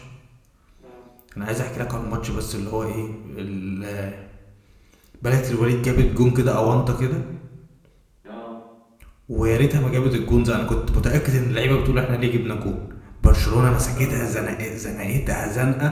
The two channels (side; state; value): both; identical; correlation 1.00